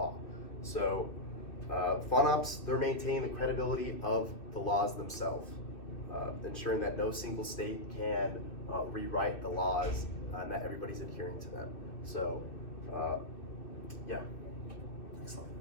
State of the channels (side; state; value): right; late; 2.6 ms